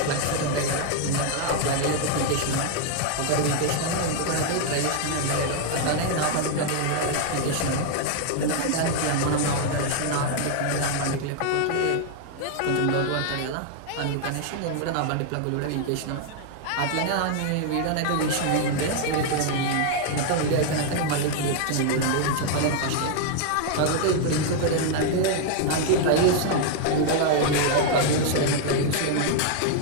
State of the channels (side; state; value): both; different; correlation 0.00